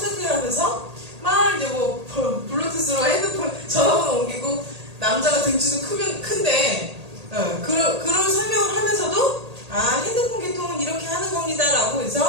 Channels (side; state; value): left; late; 1.8 ms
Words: 하면서 막 이제 뭐 블루투스로 핸드폰 전화번호 옮기고 남자가 등치도 큰데 그런 설명을 하면서도 핸드폰 개통은 이렇게 하는 겁니다 라고